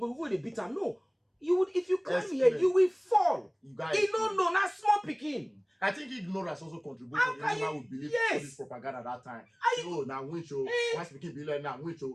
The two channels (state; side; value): identical; both; correlation 1.00